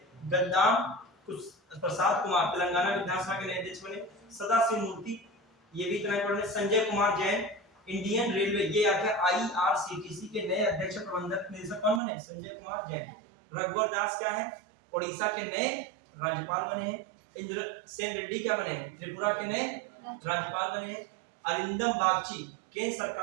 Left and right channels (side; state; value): left; drops out; at 12.0 s